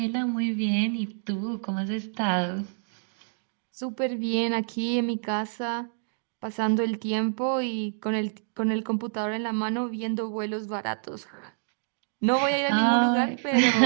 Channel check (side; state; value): left; silent; digital silence